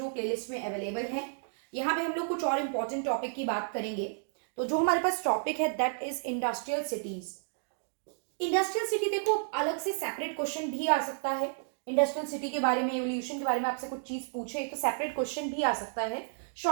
प्लेलिस्ट में अवेलेबल है। यहाँ पे हम लोग कुछ और इंपॉर्टेंट टॉपिक की बात करेंगे। तो जो हमारे पास टॉपिक है that is industrial cities. Industrial city देखो अलग से सेपरेट क्वेश्चन भी आ सकता है। इंडस्ट्रियल सिटी के बारे में, एवोल्यूशन के बारे में आपसे कुछ चीज पूछे तो सेपरेट क्वेश्चन भी आ सकता है।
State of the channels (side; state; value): left; silent; digital silence